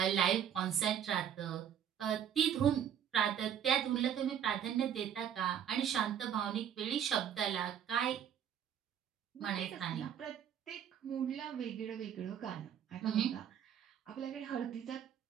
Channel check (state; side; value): quieter; left; 9.1 dB